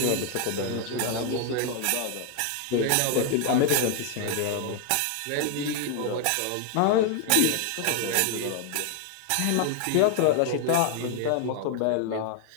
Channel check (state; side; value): different; both; correlation 0.00